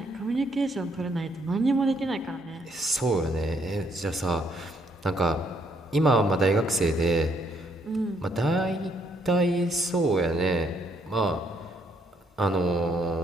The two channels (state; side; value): normal; both; correlation 0.71